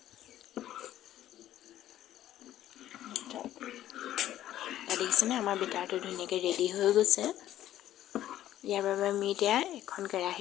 এয়া দেখিছেনে, আমাৰ বেটাৰটো ধুনীয়াকৈ ৰেডি হৈ গৈছে। ইয়াৰ বাবে আমি এতিয়া এখন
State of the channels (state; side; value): quieter; right; 12.7 dB